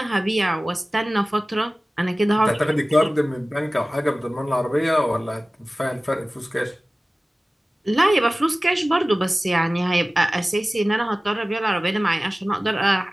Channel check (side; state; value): both; normal; correlation 0.97